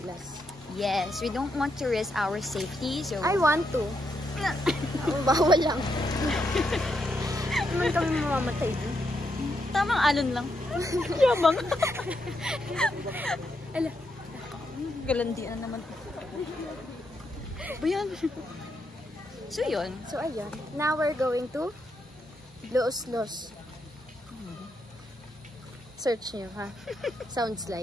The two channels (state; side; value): normal; both; correlation 0.80